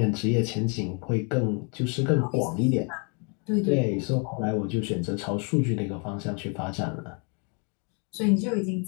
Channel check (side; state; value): right; quieter; 36.9 dB